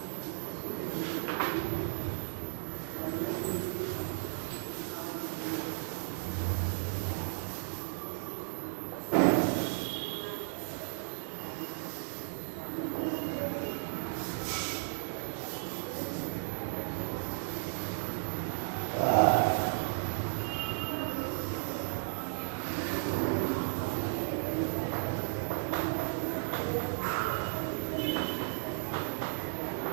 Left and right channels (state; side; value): silent; left; digital silence